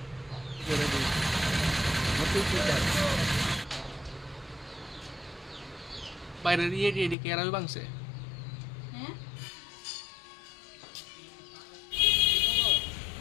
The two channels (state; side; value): drops out; right; at 7.2 s